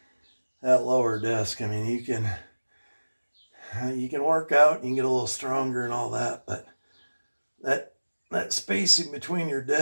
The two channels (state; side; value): inverted; both; correlation -1.00